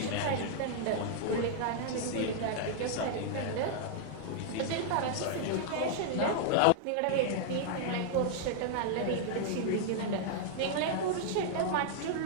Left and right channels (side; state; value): both; different; correlation -0.01